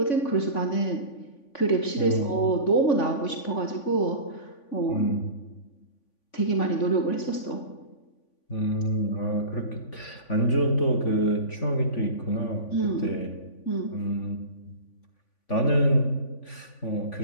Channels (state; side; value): late; right; 3.5 ms